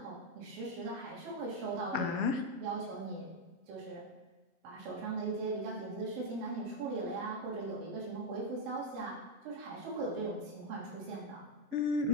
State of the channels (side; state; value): left; late; 7.7 ms